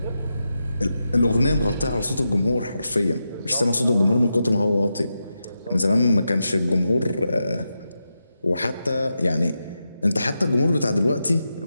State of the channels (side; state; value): both; inverted; correlation -0.88